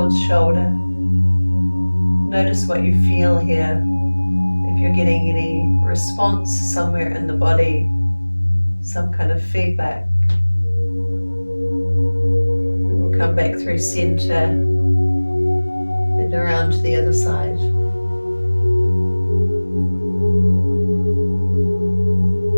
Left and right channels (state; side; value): inverted; both; correlation -1.00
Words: shoulder. Notice what you feel here. If you're getting any response somewhere in the body, some kind of feedback. We'll come back through center and around to the other side.